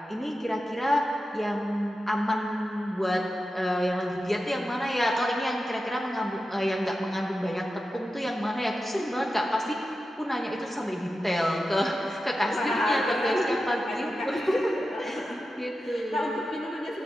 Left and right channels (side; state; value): both; normal; correlation 0.91